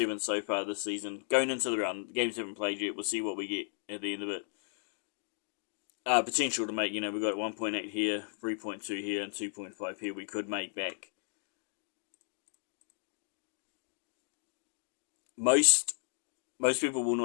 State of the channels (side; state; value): right; silent; 55 dB below the other